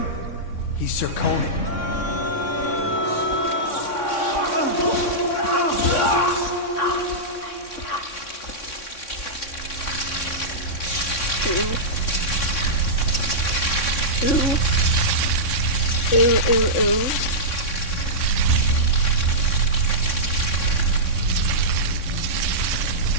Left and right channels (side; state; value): right; late; 3.6 ms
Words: He's Sir Conan. Ooh. Ooh.